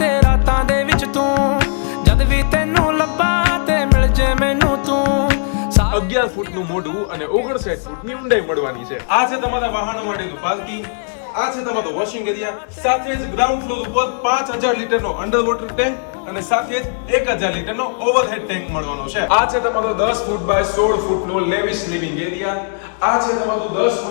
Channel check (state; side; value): silent; right; digital silence